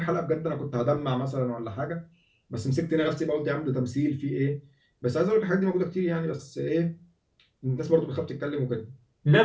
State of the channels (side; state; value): both; identical; correlation 1.00